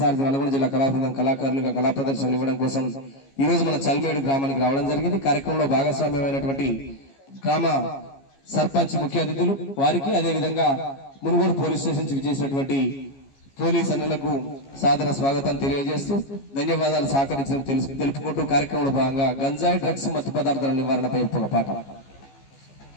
సారథి నల్గొండ జిల్లా కళాబృందం కళాకారులుగా కళా ప్రదర్శనలు ఇవ్వడం కోసం ఈ రోజు మన చల్మేడు గ్రామానికి రావడం జరిగింది. కార్యక్రమంలో భాగస్వామ్యమైనటువంటి గ్రామ సర్పంచ్ ముఖ్య అతిథులు వారికి, అదేవిధంగా మునుగోడు పోలీస్ స్టేషన్ నుంచి విచ్చేసినటువంటి పోలీస్ అన్నలకు సాదర స్వాగతం తెలియజేస్తూ ధన్యవాదాలు సహకరించడం తెలుపుకుంటూ కార్యక్రమంలో భాగంగా గంజాయి, డ్రగ్స్, మత్తు పదార్థాల నివారణపై ఒక పాట.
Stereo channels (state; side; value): late; right; 15 ms